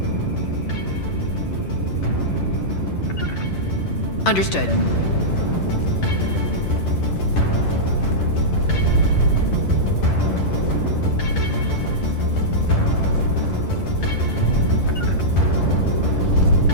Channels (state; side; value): late; right; 11 ms